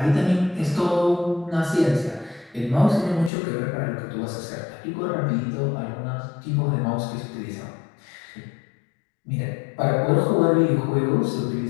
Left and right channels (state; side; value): drops out; right; at 3.3 s